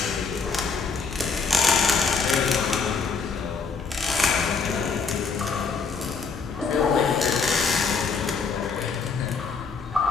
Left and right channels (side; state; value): right; quieter; 4.9 dB